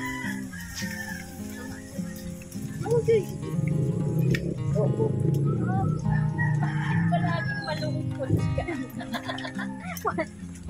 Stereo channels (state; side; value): noise; left; rumble, 28 dB below the sound